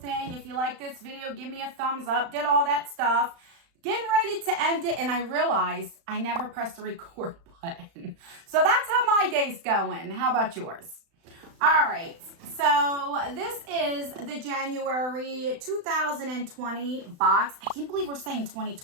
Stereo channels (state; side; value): late; left; 35 ms